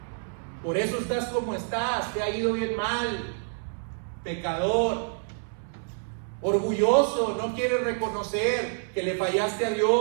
por eso estás como estás, te ha ido bien mal, pecador, orgulloso, no quieres reconocer que le fallaste a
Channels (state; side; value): silent; left; digital silence